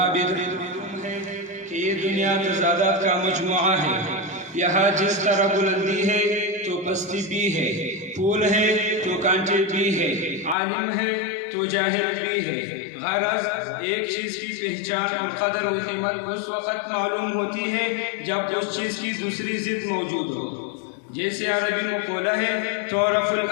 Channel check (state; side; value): drops out; right; at 10.6 s